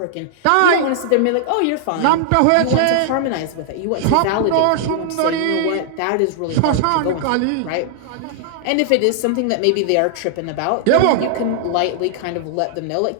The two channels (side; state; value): both; different; correlation -0.01